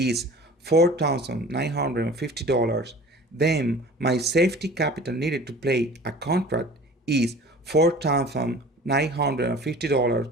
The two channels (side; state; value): both; normal; correlation 0.43